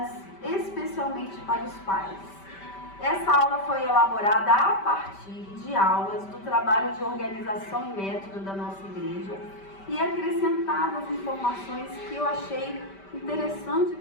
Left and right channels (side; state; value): right; late; 5.1 ms